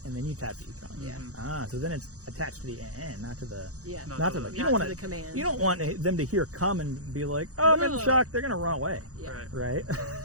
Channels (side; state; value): left; late; 0.66 ms